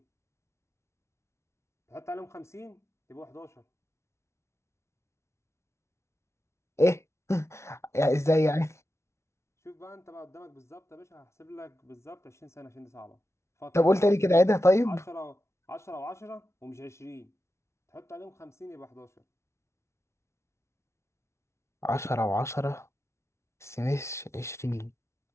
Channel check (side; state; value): right; late; 0.13 ms